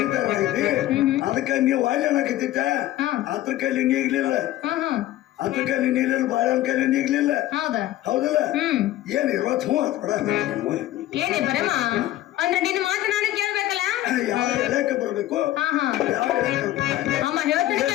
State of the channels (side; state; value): right; quieter; 14.5 dB